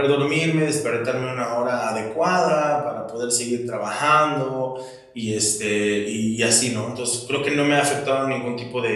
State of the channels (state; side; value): identical; both; correlation 1.00